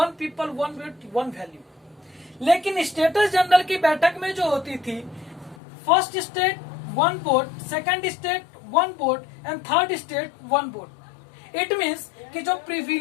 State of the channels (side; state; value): right; drops out; at 5.6 s